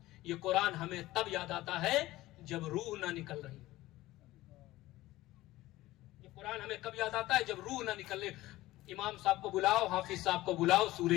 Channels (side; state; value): right; quieter; 17.2 dB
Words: یہ قرآن ہمیں تب یاد آتا ہے جب روح نہ نکل رہی. یہ قرآن ہمیں کب یاد آتا ہے؟ جب روح نہ نکل رہی. امام صاحب کو بلاؤ، حافظ صاحب کو بلاؤ، سورہ